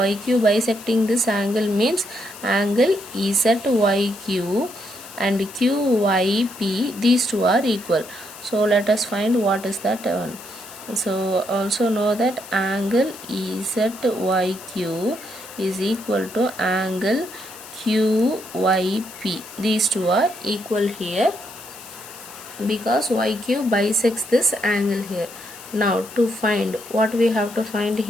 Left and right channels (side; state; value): left; noise; hiss, 16 dB below the sound